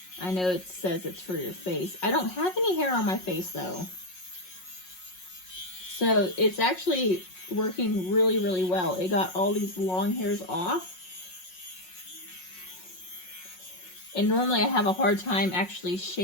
I know it says it's for your face. I don't have any hair on my face though. So it's actually working really, really well. It got all these long hairs off. And normally I have a hard time actually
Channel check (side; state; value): right; late; 5.5 ms